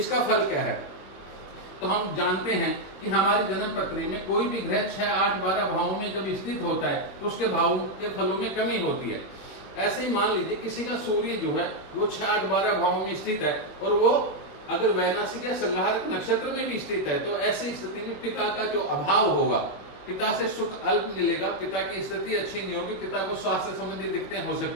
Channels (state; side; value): late; right; 21 ms